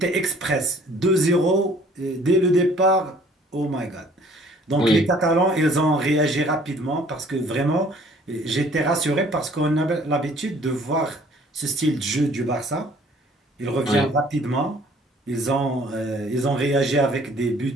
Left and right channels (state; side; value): normal; both; correlation 0.56